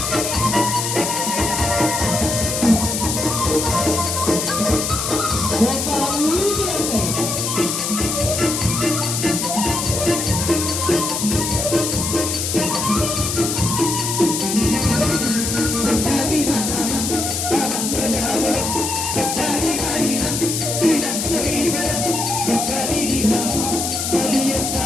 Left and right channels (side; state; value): left; noise; hiss, 2 dB below the sound